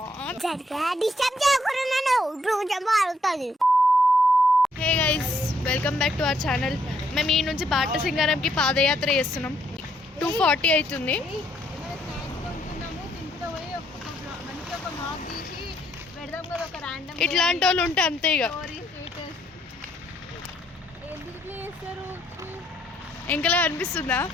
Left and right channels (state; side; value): normal; both; correlation 0.71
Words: డిస్టర్బ్ చేయకున్నాను రోజు ఆడుతది. Hey guys welcome back to our channel. మేము ఈ నుంచి బాట సింగారంకి పాదయాత్ర చేస్తున్నాం. 2:40 అవుతుంది. ఇట్లాంటి వాళ్ళు ఉంటే అంతే ఇక ఇంకలా అనిపిస్తుందా?